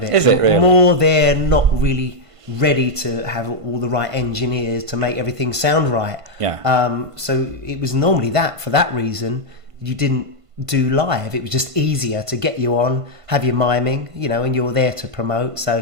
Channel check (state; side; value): late; left; 1.5 ms